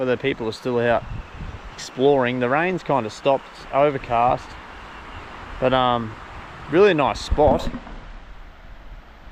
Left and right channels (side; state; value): both; identical; correlation 1.00